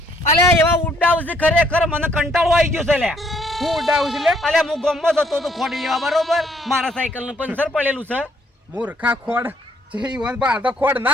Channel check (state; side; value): normal; both; correlation 0.67